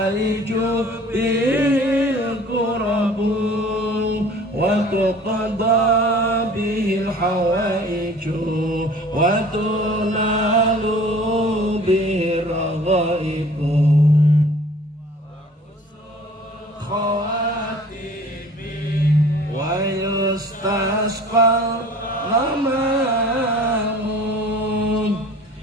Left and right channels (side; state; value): both; normal; correlation 0.48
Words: bihil kurabu wa tuqadda bihil hawaiju wa tunalu bihil raghaibu khawatimi wa yustasqal ghamamun